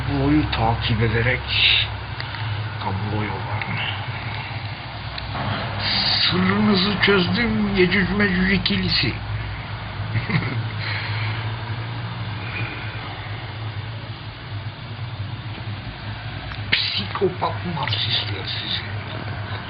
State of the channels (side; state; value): both; identical; correlation 1.00